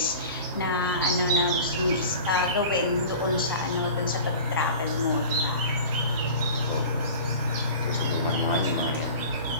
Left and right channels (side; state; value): both; inverted; correlation -0.38